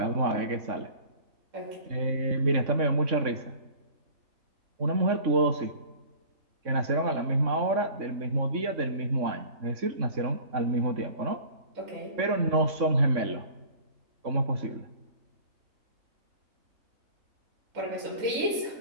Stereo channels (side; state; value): left; late; 3.6 ms